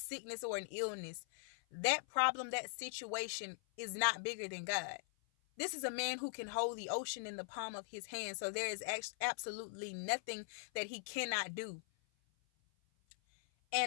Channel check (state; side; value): silent; right; 50 dB below the other